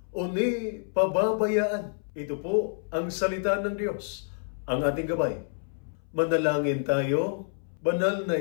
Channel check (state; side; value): silent; right; 59 dB below the other